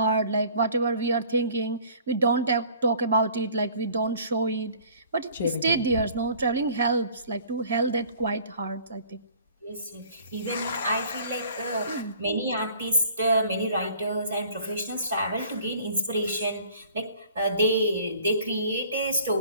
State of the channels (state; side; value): inverted; both; correlation -0.52